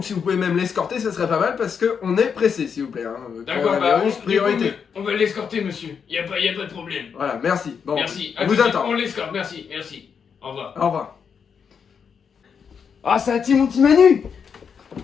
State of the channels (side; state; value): right; quieter; 6.7 dB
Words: si vous pouvez même l'escorter, ça serait pas mal, parce qu'on est pressé, s'il vous plaît. Hein. D'accord, bah Coronavirus, priorité. on va l'escorter, monsieur, y a pas de problème. Voilà, merci. Bon, Merci, on vous attend. on l'escorte, merci. Au revoir. Au revoir. Ah, ça a-t-il mon petit Manu?